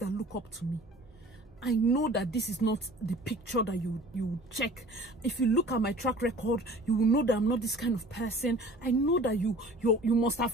look up to me, I know that this is not the picture that you check. If you look at my track record, you will know that I'm not this kind of person. I know that you must have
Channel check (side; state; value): both; normal; correlation 0.46